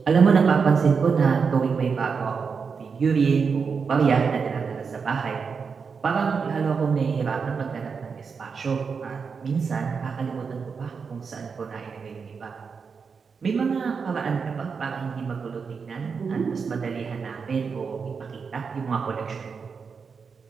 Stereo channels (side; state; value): left; quieter; 5.6 dB